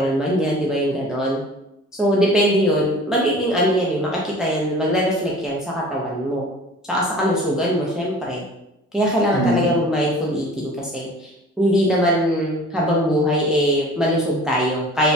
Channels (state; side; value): normal; both; correlation 0.44